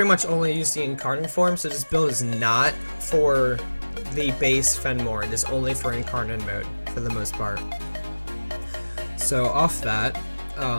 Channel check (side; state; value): both; inverted; correlation -1.00